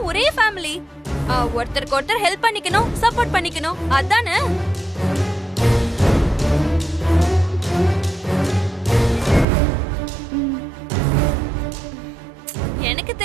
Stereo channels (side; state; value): left; drops out; at 9.5 s